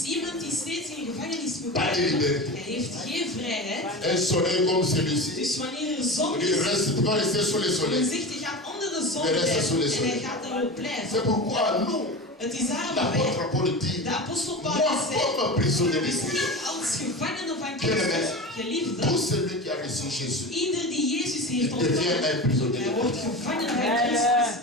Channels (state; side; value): normal; both; correlation 0.28